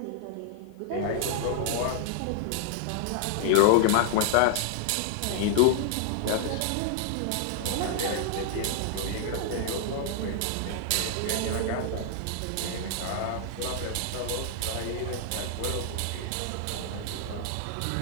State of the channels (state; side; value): different; both; correlation -0.01